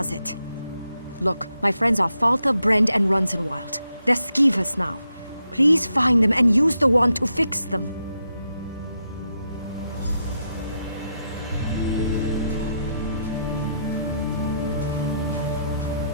it. Look, my friends are Falta, Brend, and Runzenwild. They're skeevers now. Please find them and use the wand to fix them.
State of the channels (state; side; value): inverted; both; correlation -0.82